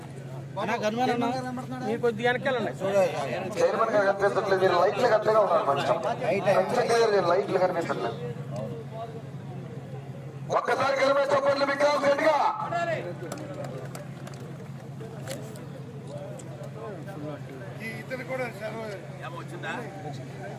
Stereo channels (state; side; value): identical; both; correlation 1.00